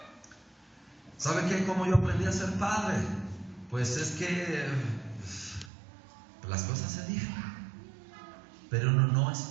¿Sabe qué? ¿Cómo yo aprendí a ser padre? Pues es que las cosas se dicen, pero uno no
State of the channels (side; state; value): left; drops out; at 5.7 s